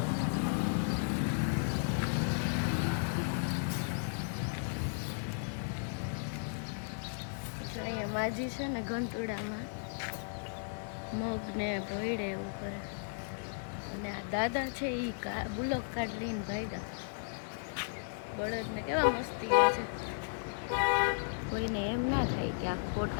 અહીંયા માજી છે ને ઘંટોડામાં મગ ને ભોયડે એવું કરે, અને આ દાદા છે એ બુલોક કાર્ડ લઈને ભાગ્યા. બળદ ને કેવા મસ્તી છે, કોઈને એમ ના થાય કે આ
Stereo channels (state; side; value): silent; right; digital silence